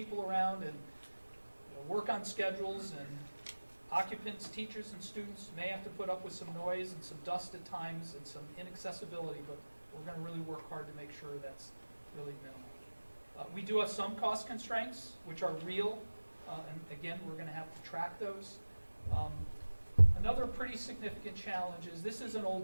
around and work on schedules, and occupants, teachers, and students may have to put up with some noise and some dust at times and some inaccessibility, but we're going to really work hard to make sure that's really minimal. We do have some cost constraints, which are real, and again, we're going to have to track those. Another pretty significant challenge is this is an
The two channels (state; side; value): inverted; both; correlation -1.00